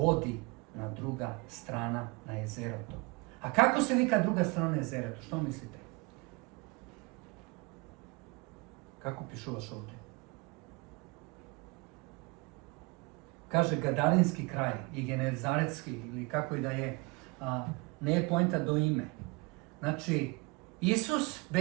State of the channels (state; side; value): quieter; left; 26.4 dB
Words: na druga strana na jezero to. A kako se vika druga strana na jezero to? Što mislite? Kako pišuvaš ovdje? Kaže Gadarinski kraj i Genezaretski, ili kako i da je, ne je poenta do ime. Znači, Isus